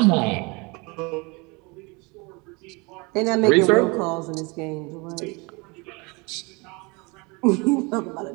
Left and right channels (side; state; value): left; quieter; 28.1 dB